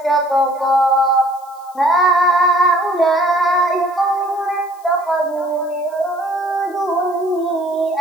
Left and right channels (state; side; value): noise; left; hiss, 27 dB below the sound